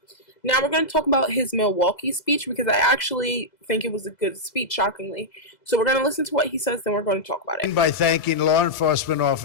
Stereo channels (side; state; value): right; late; 2.0 ms